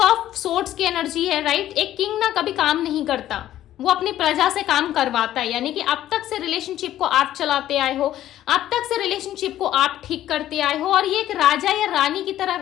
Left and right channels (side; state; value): right; quieter; 12.8 dB